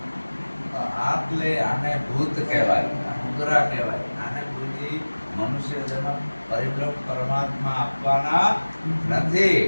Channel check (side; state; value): both; inverted; correlation -1.00